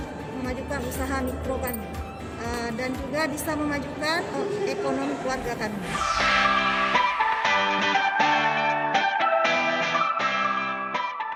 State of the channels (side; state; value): both; identical; correlation 1.00